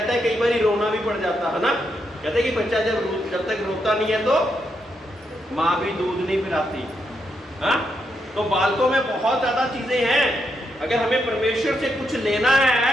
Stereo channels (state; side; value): normal; both; correlation 0.81